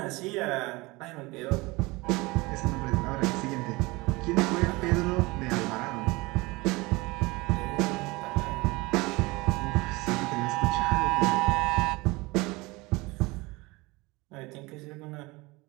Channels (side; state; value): left; quieter; 23.2 dB